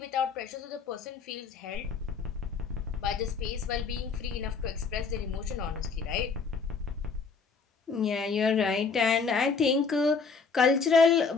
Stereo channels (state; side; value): quieter; right; 5.1 dB